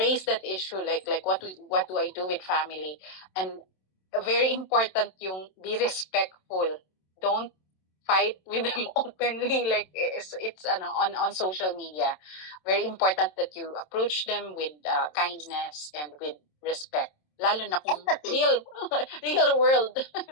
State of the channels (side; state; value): right; late; 27 ms